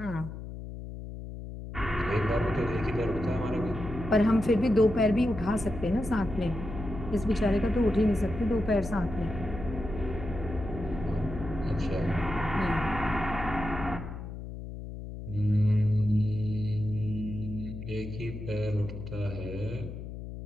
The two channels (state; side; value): noise; left; hum, 9 dB below the sound